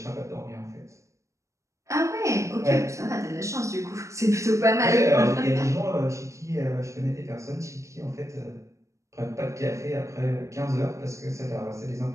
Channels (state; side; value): late; left; 0.15 ms